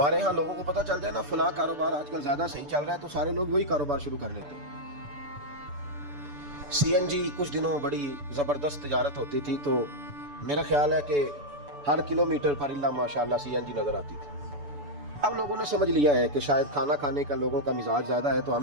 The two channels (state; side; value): late; left; 6.9 ms